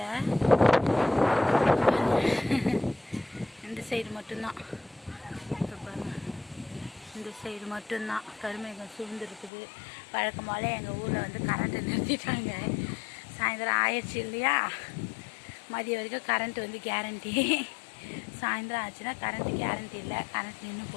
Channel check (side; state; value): right; drops out; at 9.5 s